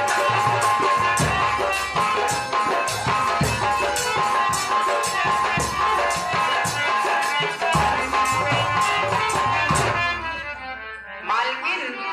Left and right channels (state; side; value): identical; both; correlation 1.00